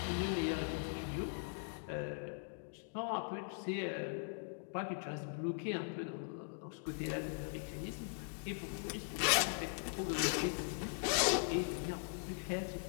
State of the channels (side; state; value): right; silent; digital silence